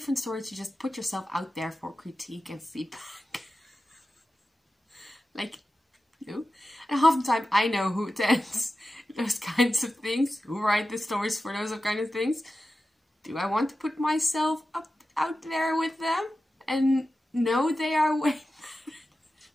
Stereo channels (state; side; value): normal; both; correlation 0.93